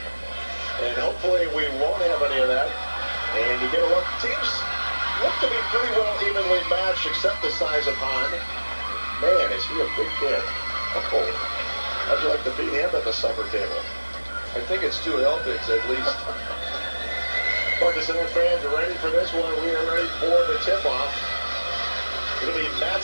And hopefully we won't have any of that. And you get a look. Teams look to be pretty well evenly matched, except the size of Hahn. Man, is he a big kid. Oh, how'd you like to beat him at the supper table? I think it's 2 helpings at least. Markesan fans are ready for this one. We are ready for the tip-off. It'll be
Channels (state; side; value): inverted; both; correlation -1.00